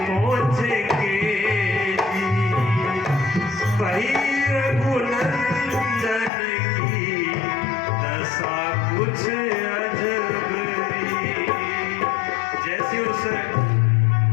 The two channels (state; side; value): drops out; right; at 6.3 s